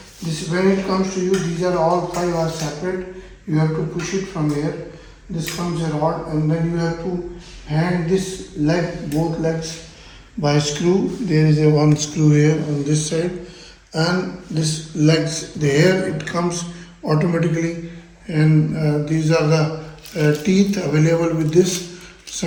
This when it comes to you, these are all five are separate. You have to push it from here. This comes a rod, and then you have to hang this leg, both legs, by screw. There is a one screw here on this side, and this legs. There it comes automatically, and these are the teeth available with this.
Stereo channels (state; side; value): identical; both; correlation 1.00